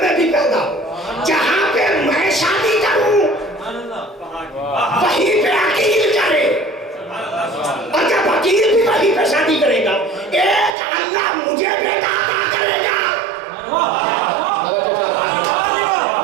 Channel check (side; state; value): left; drops out; at 10.8 s